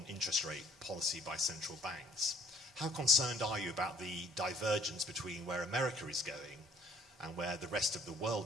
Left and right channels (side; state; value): both; normal; correlation 0.59